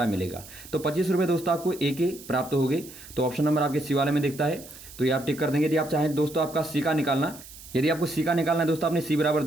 मिलेगा। तो 25 रुपये दोस्तों आपको a के प्राप्त हो गए। तो ऑप्शन नंबर आपके सी वाले में दिखता है, तो ये आप टिक कर देंगे। यदि आप चाहें दोस्तों आपका सी का निकालना, यदि आपको सी का निकालना है दोस्तों, आपने सी बराबर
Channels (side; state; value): right; noise; hiss, 17 dB below the sound